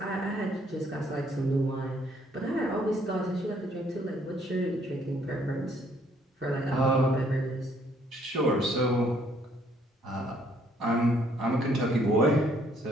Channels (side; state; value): both; normal; correlation 0.65